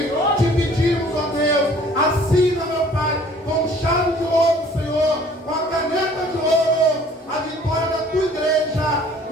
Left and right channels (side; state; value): both; normal; correlation 0.54